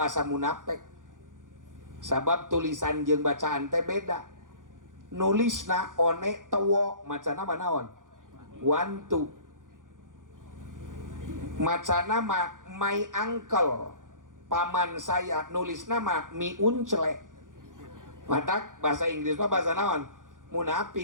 munafik. Sabab tulisan jeung bacaan teh beda. Nulisna one tewo macana manaon? Wantu. Macana mah my uncle, paman saya, nulisna mah mi uncle. Matak bahasa Inggris mah bahasa naon?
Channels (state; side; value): late; left; 0.88 ms